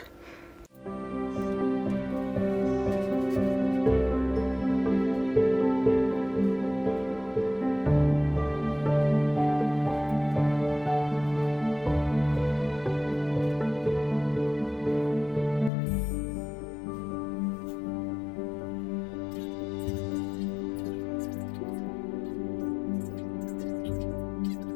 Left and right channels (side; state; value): right; drops out; at 15.7 s